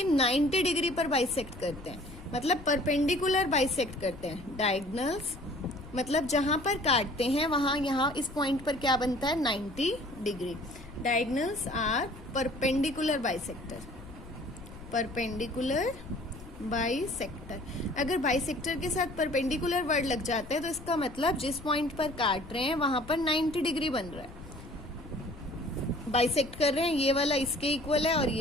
90 डिग्री पर बाइसेक्ट करते हैं, मतलब परपेंडिकुलर बाइसेक्ट करते हैं। डायगोनल्स मतलब जहां पर काटते हैं वहां, यहाँ इस पॉइंट पर क्या बनता है, 90 degree. Diagonals are perpendicular bisector. Perpendicular bisector. अगर बाइसेक्टर के साथ परपेंडिकुलर वर्ड लग जाते हैं तो इसका मतलब जिस पॉइंट पर काट रहे हैं वहां पर 90 डिग्री बन रहा है, बाइसेक्ट कर रहे हैं। ये वाला इसके इक्वल है और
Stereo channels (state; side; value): noise; left; rumble, 17 dB below the sound